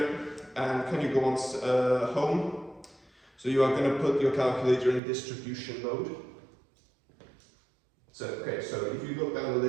and can you go on home? So you are going to put your calculator in distribution mode. So, okay, so if you look down the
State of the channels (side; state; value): left; drops out; at 5.0 s